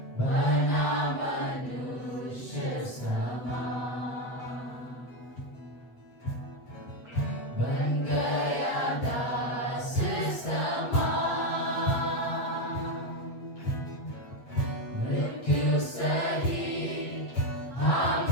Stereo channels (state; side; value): late; right; 8.2 ms